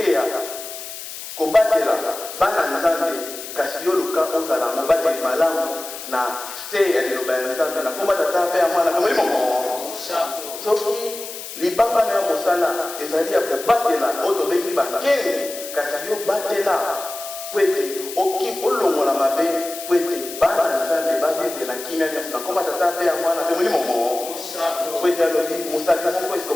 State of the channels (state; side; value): noise; left; hiss, 10 dB below the sound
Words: kobatela bana nzambe kasi yo luka ozala mobateli malamu na se ya liloba ya nzambe na komba tata mpe ya mwana mpe molimo mo soki libanga na ya mosala ezali ya kobatela oyo tobengi bakenge kasi yo batela po ete olongola mabe po ete bana nzambe bavivela kimia nyonso na komba tata mpe ya mwana mpe molimo mo po ete alobi mosaki moko